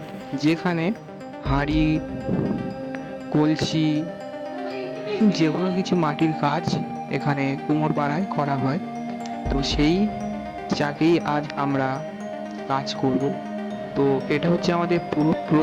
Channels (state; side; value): identical; both; correlation 1.00